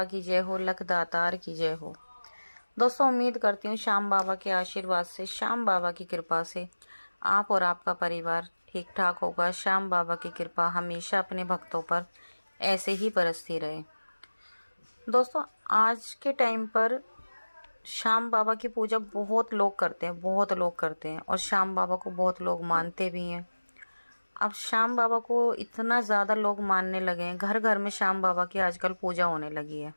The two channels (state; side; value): inverted; both; correlation -1.00